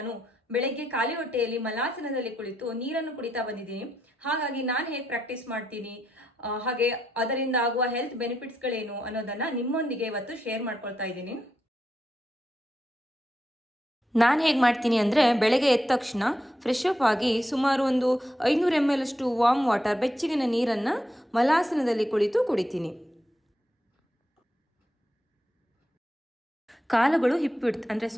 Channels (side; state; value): both; normal; correlation 0.82